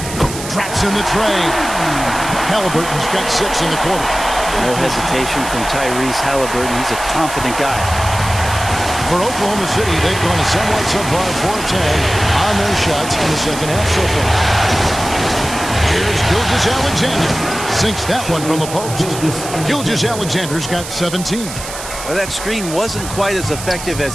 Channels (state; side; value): noise; right; hiss, 10 dB below the sound